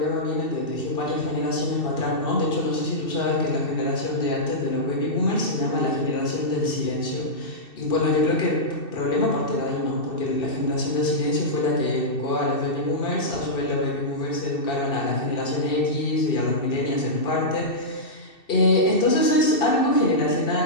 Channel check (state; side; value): late; right; 2.7 ms